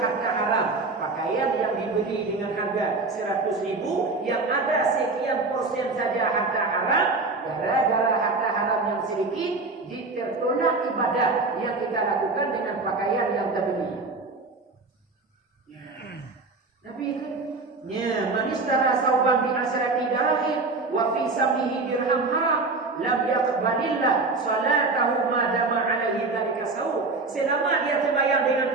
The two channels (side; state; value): left; quieter; 3.7 dB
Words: haram. Pakaian yang dibeli dengan harga 100.000, yang ada sekian persen saja harga haram, gara-gara harga haram yang sedikit, ditertolak ibadah yang kita lakukan dengan pakaian yang terbeli. Nabi itu ya, manistara sauban bi asrati dirham wa fi samihi dirham haram lam yaqbalillah salatahu ma dama alaihi dzalika saw. Selama dia sembahyang dengan